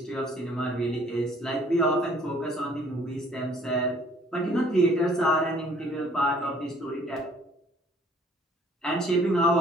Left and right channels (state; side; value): normal; both; correlation 0.57